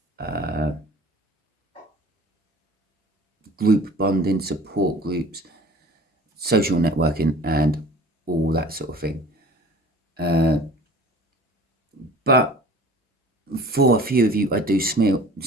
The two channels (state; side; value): normal; both; correlation 0.46